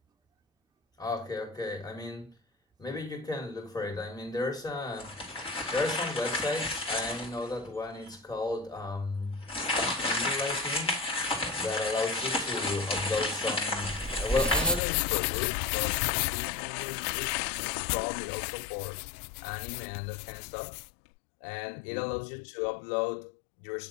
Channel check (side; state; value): right; drops out; at 14.8 s